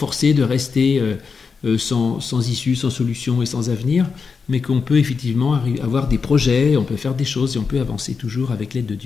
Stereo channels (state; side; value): quieter; right; 5.3 dB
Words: de rester sans issue, sans solution et sans avenir, mais qu'on peut effectivement avoir des projets, on peut faire des choses et on peut avancer toujours avec l'aide de